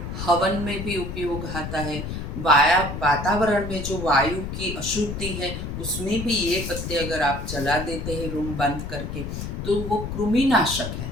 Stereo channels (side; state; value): left; noise; rumble, 6 dB below the sound